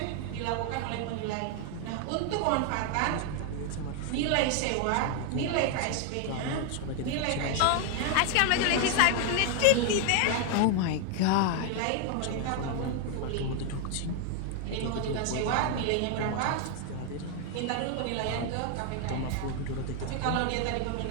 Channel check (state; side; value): different; both; correlation 0.00